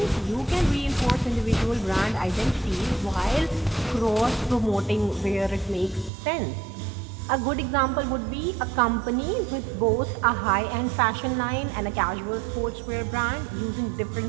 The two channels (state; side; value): drops out; left; at 6.1 s